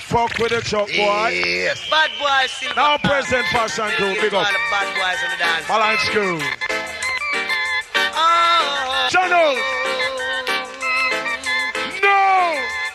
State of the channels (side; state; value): both; identical; correlation 1.00